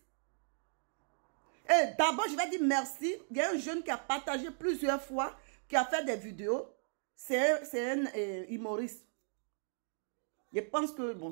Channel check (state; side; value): silent; left; digital silence